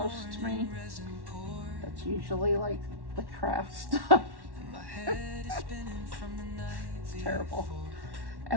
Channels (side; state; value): left; late; 1.1 ms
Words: to me. That's usually like the craft stuff. It's terrible.